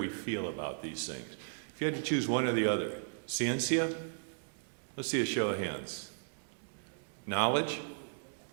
we feel about these things. If you had to choose one or the other, Ciencia, let's see a show of hands. Knowledge,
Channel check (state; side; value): silent; left; digital silence